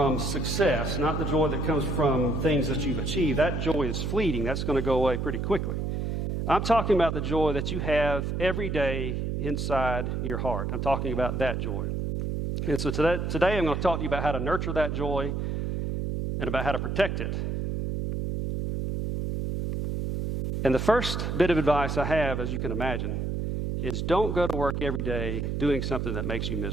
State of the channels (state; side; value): noise; right; hum, 1 dB below the sound